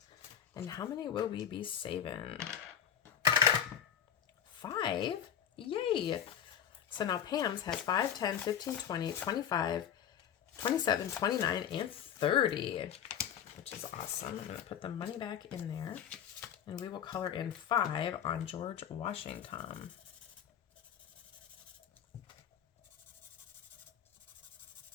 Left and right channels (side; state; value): right; quieter; 9.1 dB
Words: And how many will we be saving? 5? Yay! So now Pam's has 5, 10, 15, 20, 25, 27, 29, and 30, which is awesome. I'm going to put the money back in there, and we will color in 5 on George Washington.